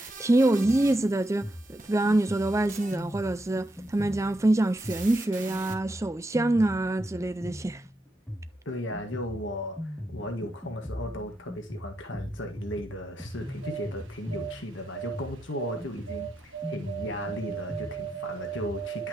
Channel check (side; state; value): both; normal; correlation 0.83